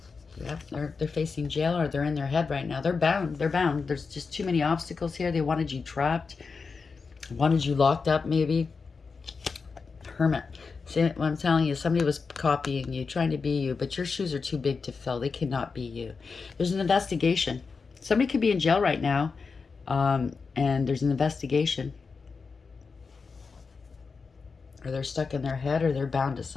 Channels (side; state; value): right; quieter; 4.9 dB